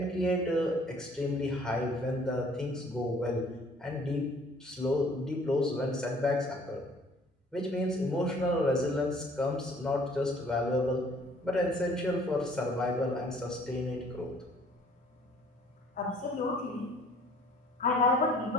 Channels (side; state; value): both; normal; correlation 0.57